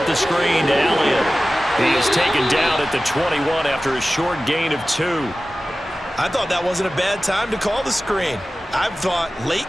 the screen to Elliott. He is taken down at the 21 after a short gain of 2. I thought that wasn't a bad time to call the screen. I thought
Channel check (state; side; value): normal; both; correlation 0.96